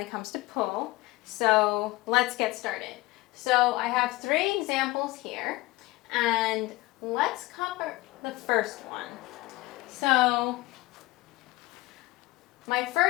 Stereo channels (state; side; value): quieter; right; 20.4 dB